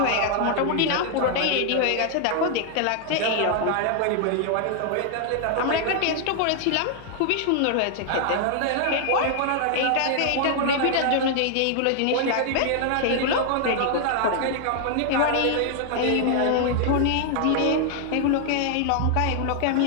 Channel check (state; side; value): different; both; correlation 0.00